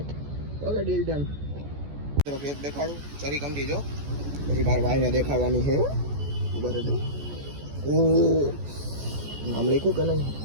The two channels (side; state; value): left; late; 14 ms